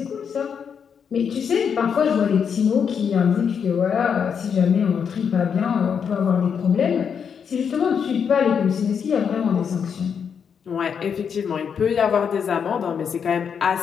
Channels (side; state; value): right; quieter; 7.0 dB